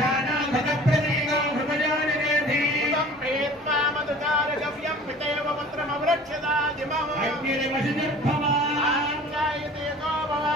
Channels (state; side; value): normal; both; correlation 0.45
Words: ప్రతీకో హృదయానిరేధీవం ప్రీత్వా మధుకారగవ్యం పితేవ పుత్రమవృక్షదాజిమం అగ్నిర్వశిర్భవ ఆంగాయతే గో భవ